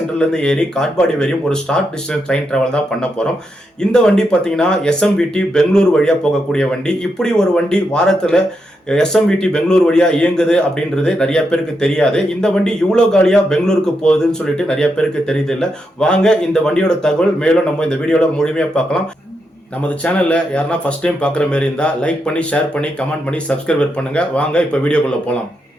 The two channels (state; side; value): normal; both; correlation 0.83